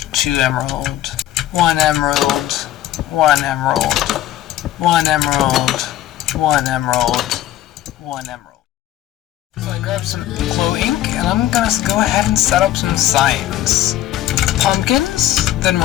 2 emerald, 1 emerald, 1 emerald, 1 emerald, 1 emerald, 1 emerald. So I grabbed some glow ink, and I'm gonna go ahead and set up some signs. Pumpkins, then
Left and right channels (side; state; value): right; quieter; 13.4 dB